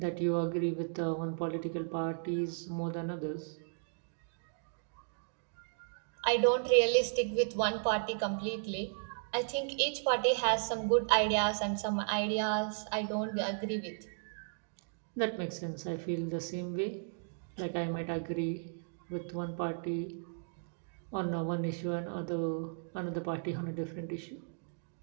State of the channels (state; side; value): silent; left; digital silence